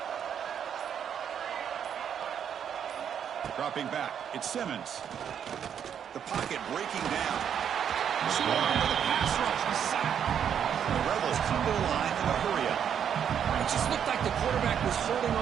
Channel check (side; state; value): left; quieter; 8.5 dB